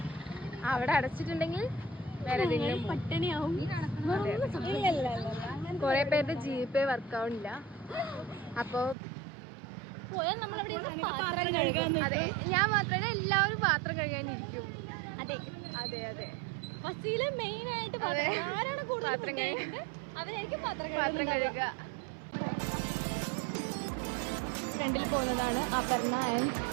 അവിടെ അടച്ചിട്ടുണ്ടെങ്കിൽ വേറെ പട്ടിണിയാവും. കുറെ പേരുടെ GPay വർക്കാവുന്നില്ല. അപ്പോൾ പോയാൽ നമ്മളവിടെ അതെ, ഞാൻ മാത്രമല്ല എല്ലാവരും പാത്രം കഴുകാനിരിക്കും. അതെ അതെ അതെ ഫസീല് മെയിൻ ആയിട്ട് ആരാണ് കൂടുതൽ പാത്രം അവരായിരിക്കും പാത്രം കഴുകുക. ഫ്രണ്ടിൽ പോകുന്നതാണ് Aparna and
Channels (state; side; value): drops out; left; at 9.0 s